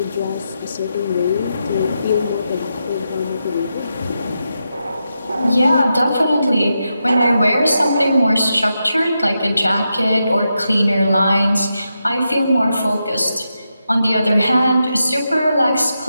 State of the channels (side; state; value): both; inverted; correlation -0.86